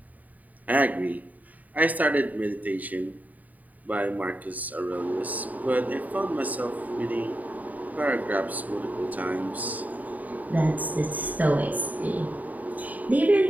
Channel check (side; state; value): left; late; 0.076 ms